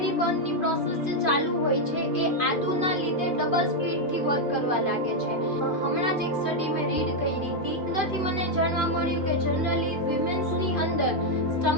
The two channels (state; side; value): late; right; 2.5 ms